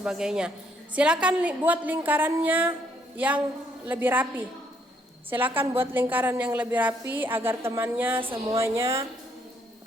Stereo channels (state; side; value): normal; both; correlation 0.70